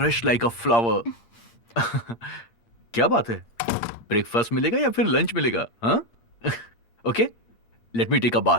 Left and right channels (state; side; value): late; right; 8.6 ms